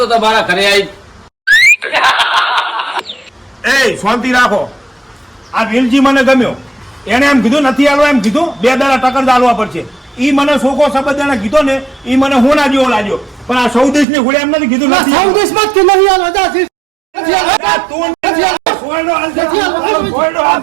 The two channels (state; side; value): drops out; left; at 14.1 s